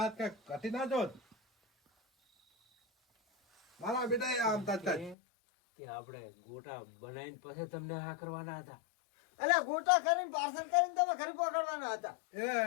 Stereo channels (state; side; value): drops out; right; at 5.2 s